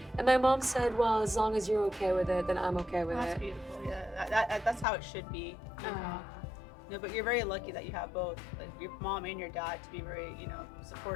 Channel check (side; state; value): right; drops out; at 4.9 s